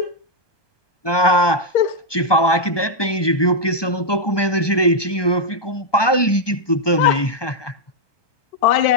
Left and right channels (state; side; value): late; right; 1.2 ms